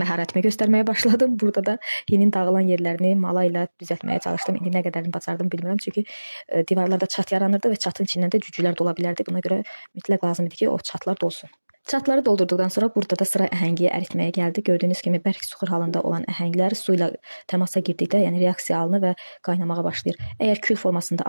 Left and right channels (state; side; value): inverted; both; correlation -1.00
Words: məharətimi göstərməyə başladım. Burada da hinin dağılan yerlərini mala ilə düzəltməyə çalışdım. İndi nə qədərini bacardım bilmirəm. Çünki divarlarda çat yaranırdı və çatın içindən də cücülər dola bilərdi. Buna görə mütləq lazım idi ki, o çatlar dolsun. Çatları doldurduqdan sonra burada da sıra əhəngiyə əritməyə gəldi. Gördüyünüz kimi bərk suxur halında olan əhənglər su ilə təmasa girdikdə, yəni reaksiya alınır və qaynamağa başlayır. Əgər kül formasında